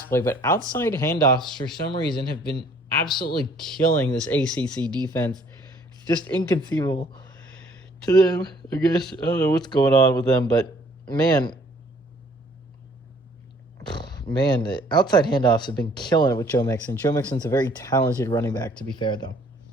play. But outside handoffs, for some reason, have been absolutely killing this ACC defense. It's just inconceivable to them, I guess. I don't know what's going on with them, but man, the outside handoffs have been killing it with Joe Mixon. Joe Mixon's a very talented running back, to be fair, though.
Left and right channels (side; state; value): both; normal; correlation 0.59